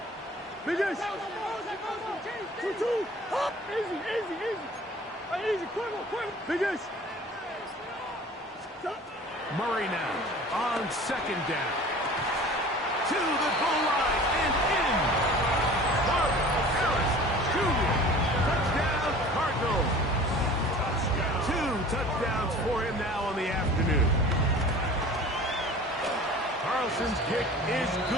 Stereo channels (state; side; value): normal; both; correlation 0.44